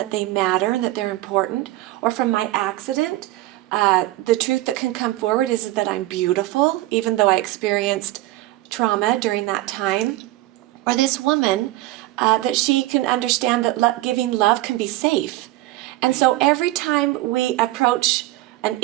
they matter and that they're important. Or from my accident, the truth that can come forward is that I'm beautiful, even though I experienced trauma during that time. Or this woman, that she can understand that giving love can be safe. And so every time we approach an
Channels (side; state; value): left; quieter; 17.5 dB